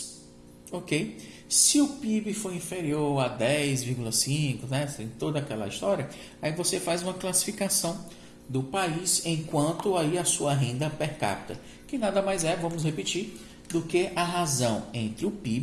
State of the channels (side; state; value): both; identical; correlation 1.00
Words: ok? Se o PIB for inferior a 10,5, né, tem toda aquela história, aí você faz uma classificação do país enquanto aí a sua renda per capita, que nada mais é, vamos repetir, do que a razão entre o